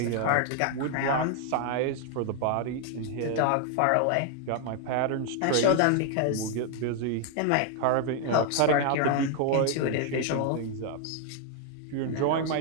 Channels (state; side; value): different; both; correlation 0.00